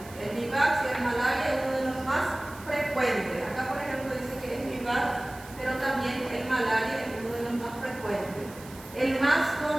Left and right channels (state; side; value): noise; right; hiss, 19 dB below the sound